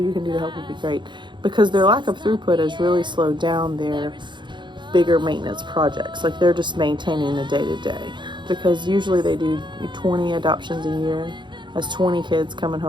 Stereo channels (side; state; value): left; late; 0.23 ms